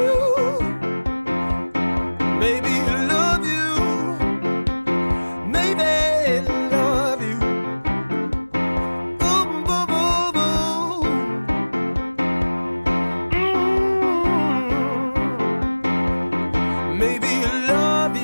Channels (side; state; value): both; inverted; correlation -1.00